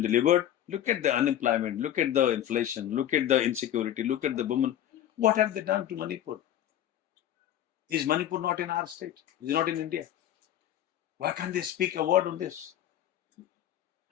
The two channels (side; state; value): right; quieter; 11.4 dB